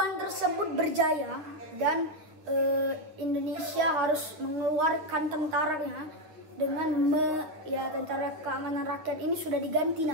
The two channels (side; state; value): left; late; 9.8 ms